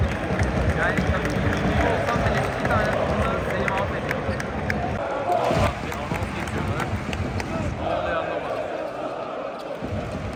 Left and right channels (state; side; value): identical; both; correlation 1.00